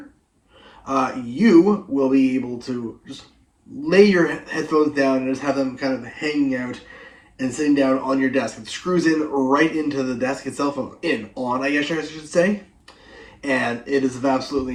you will be able to just lay your headphones down and just have them kind of hanging out and sitting down on your desk. It screws in right into the desk itself, I guess I should say. And it is of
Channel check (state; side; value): identical; both; correlation 1.00